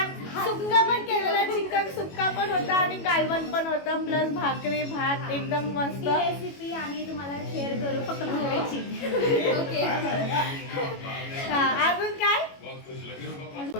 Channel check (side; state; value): right; late; 21 ms